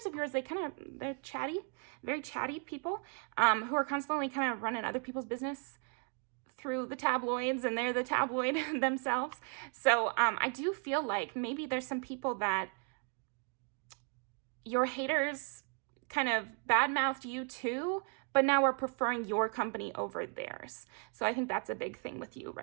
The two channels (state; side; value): quieter; left; 38.6 dB